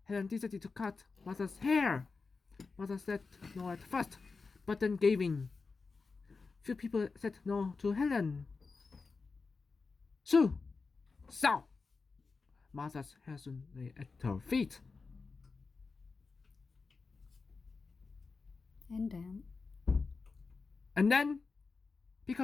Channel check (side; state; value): right; quieter; 4.4 dB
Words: Helen decided to cut Martha's hair. Martha said no at first, but then gave in. Few people said no to Helen. So, Martha's hair soon lay at her feet. And then,